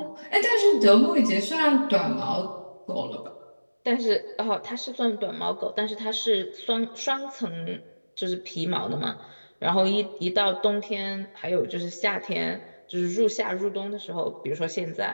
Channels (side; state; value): both; inverted; correlation -1.00